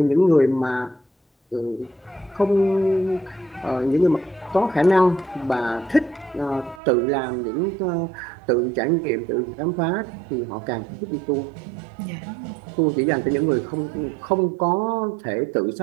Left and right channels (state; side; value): drops out; left; at 6.8 s